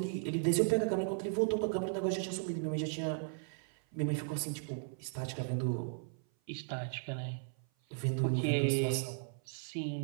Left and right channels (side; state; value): left; silent; 54 dB below the other